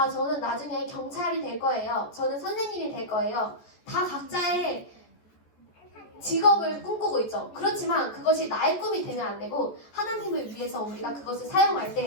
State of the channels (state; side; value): late; right; 14 ms